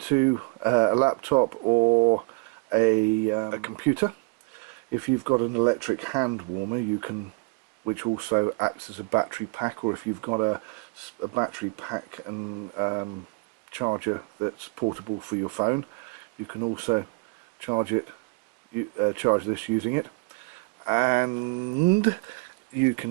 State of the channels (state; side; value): quieter; left; 30.6 dB